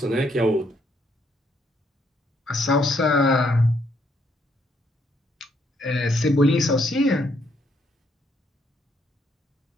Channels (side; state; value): both; normal; correlation 0.72